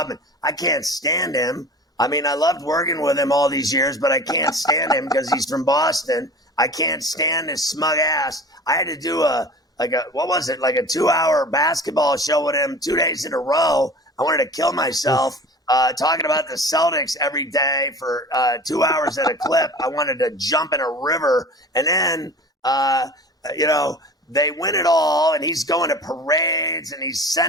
I can't stand him. I mean, I loved working with him all these years, but I can't stand him because he's from Boston. I can't stand his smug ass. I had to do a 2-hour basketball show with him 2 days in a row. I wanted to kill myself talking about the Celtics every day for 2 hours at a clip. I wanted to jump in a river. And then, they win it all, and he's going to parades, and he's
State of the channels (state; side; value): normal; both; correlation 0.39